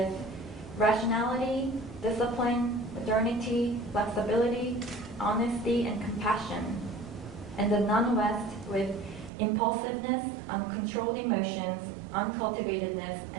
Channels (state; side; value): drops out; left; at 9.3 s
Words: rationality, discipline, modernity, flexibility, honesty, and compassion, and the non-West with impulsiveness, uncontrolled emotions, uncultivatedness,